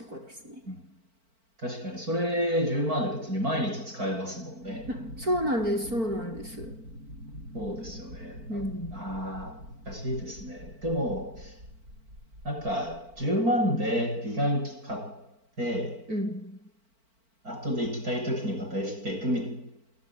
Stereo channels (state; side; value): late; left; 4.5 ms